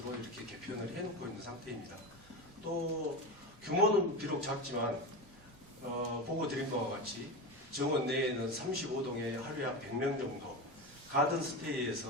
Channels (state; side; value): normal; both; correlation 0.21